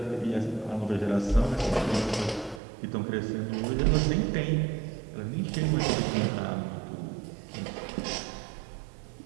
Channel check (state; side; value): drops out; left; at 2.6 s